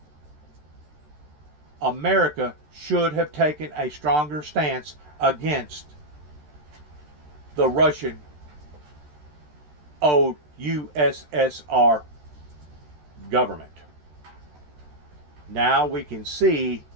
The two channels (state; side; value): late; left; 13 ms